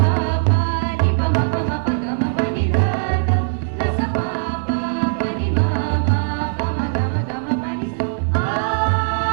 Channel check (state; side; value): silent; left; digital silence